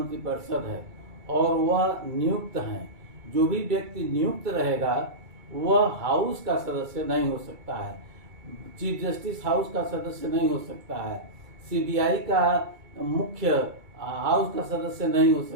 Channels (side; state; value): left; late; 2.3 ms